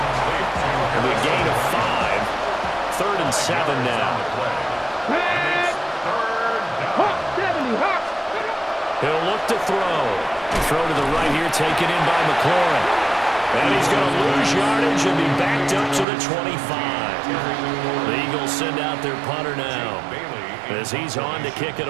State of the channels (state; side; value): drops out; left; at 16.1 s